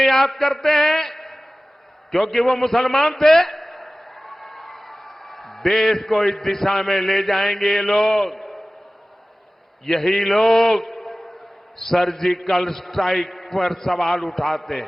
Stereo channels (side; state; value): both; normal; correlation 0.97